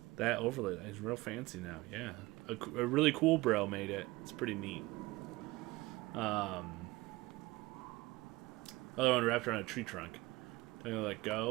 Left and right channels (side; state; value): left; quieter; 20.9 dB